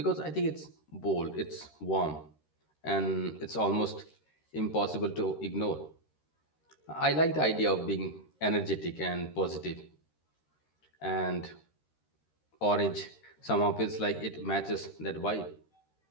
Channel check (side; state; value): right; late; 13 ms